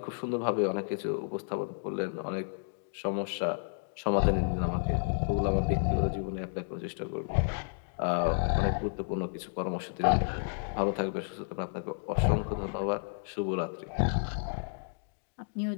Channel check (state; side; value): silent; right; digital silence